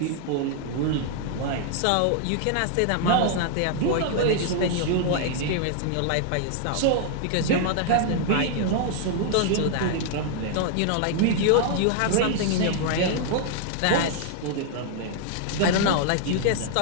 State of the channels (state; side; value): different; both; correlation 0.00